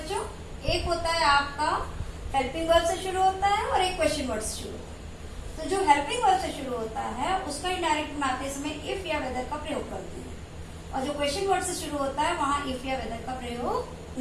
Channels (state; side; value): identical; both; correlation 1.00